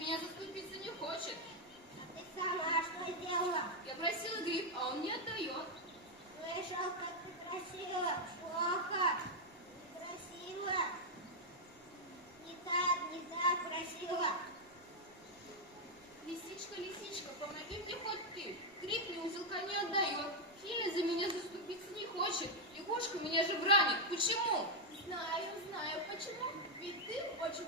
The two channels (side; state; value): both; normal; correlation 0.00